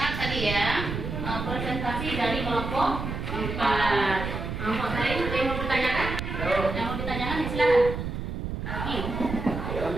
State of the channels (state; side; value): noise; right; rumble, 5 dB below the sound